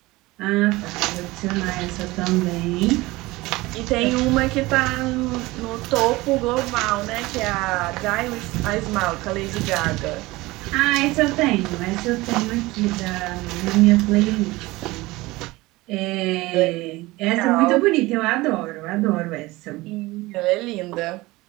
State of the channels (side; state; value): left; quieter; 20.5 dB